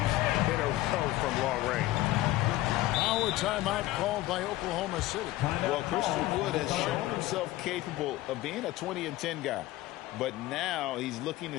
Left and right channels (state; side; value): quieter; right; 16.8 dB